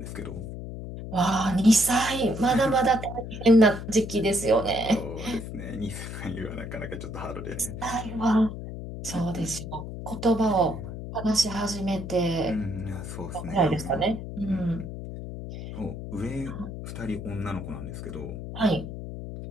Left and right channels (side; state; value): left; noise; hum, 8 dB below the sound